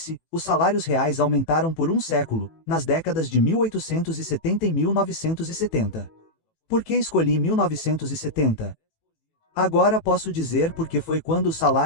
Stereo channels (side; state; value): right; late; 18 ms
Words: os salários reais aumentaram por um século, nas décadas de 1870 e 1970. Por que escolhi 1970? Agora posso dizer porque foi quando os